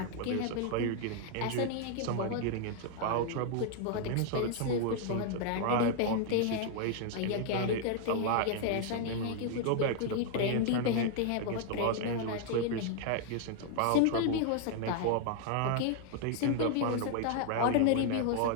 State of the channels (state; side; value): different; both; correlation 0.00